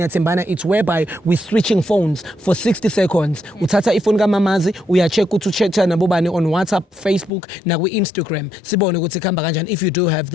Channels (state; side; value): drops out; right; at 7.3 s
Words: it's whereby we're switching phones for 60 seconds. Uthatha ifoni kamamazi, uya-check ukuthi ucheck nabo bani on WhatsApp, Facebook, na ku-Instagram. Sibone ukuthi khamba kanjani if you do have